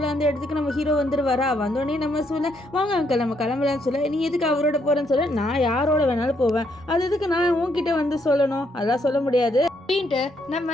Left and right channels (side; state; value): both; normal; correlation 0.74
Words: அந்த இடத்துக்கு நம்ம ஹீரோ வந்துருவாரா. வந்தோடனே நம்ம சொல்ல, வாங்க அங்கிள் நம்ம கிளம்பலான்னு சொல்ல. நீ எதுக்கு அவரோட போகிறேன்னு சொல்ல. நான் யாரோட வேணாலும் போவேன், அது எதுக்கு நான் உன்கிட்ட வந்து சொல்லணும், அதெல்லாம் சொல்ல முடியாது அப்படின்ட்டு